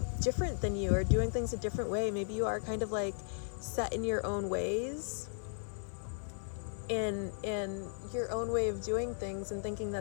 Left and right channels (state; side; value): silent; right; 54 dB below the other